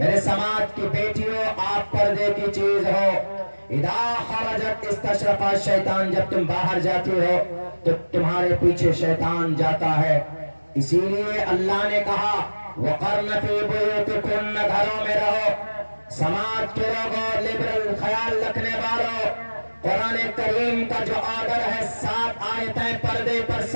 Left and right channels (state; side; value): inverted; both; correlation -1.00